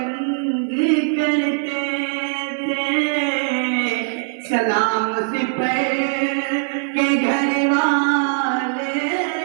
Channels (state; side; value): silent; left; digital silence